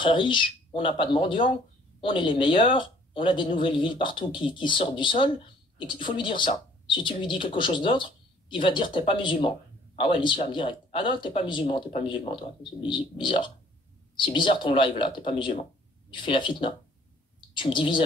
riche, on n'a pas de mendiants, on est les meilleurs, on a des nouvelles villes partout qui sortent du sol, et il faut lui dire ça. Si tu lui dis quelque chose d'autre, il va dire t'es pas musulman. Ah ouais, l'islam direct. Ah non, t'es pas musulman toi, c'est bizarre. C'est bizarre ton live là, t'es pas musulman. Tu fais la fitna. Tu me divises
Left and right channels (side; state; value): both; normal; correlation 0.58